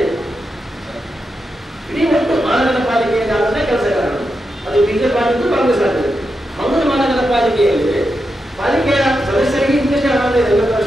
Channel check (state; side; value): normal; both; correlation 0.87